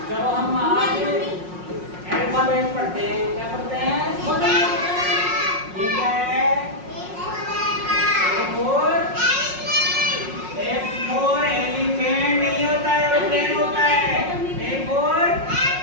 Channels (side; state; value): left; late; 5.5 ms